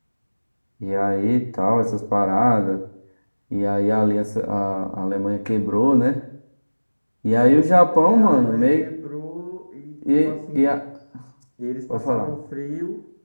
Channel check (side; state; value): both; inverted; correlation -1.00